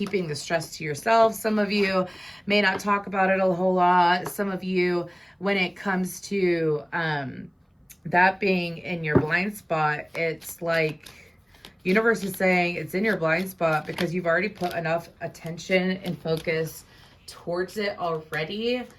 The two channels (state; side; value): identical; both; correlation 1.00